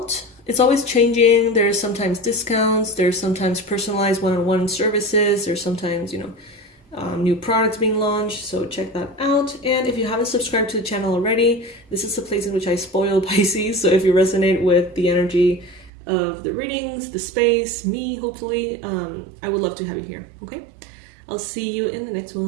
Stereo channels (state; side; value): drops out; left; at 15.9 s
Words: It's always changing. There's sometimes discounts. There's sometimes personalized one-on-one services. There's sometimes, new products being launched. So check that out. And if you haven't subscribed to the channel already, this is the place in which I spoil Pisces. So if you resonate with the energy of the readings, the space, me, hopefully, I would love to have you here. Okay? I'll see you in the next